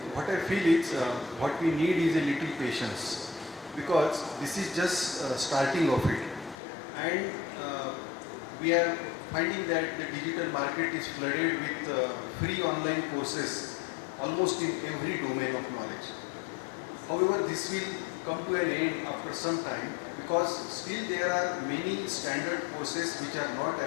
what I feel is what we need is a little patience, because this is just starting of it, and we are finding that the digital market is flooded with free online courses almost in every domain of knowledge. However, this will come to an end after some time, because still there are many standard courses which are not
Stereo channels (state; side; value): drops out; right; at 6.6 s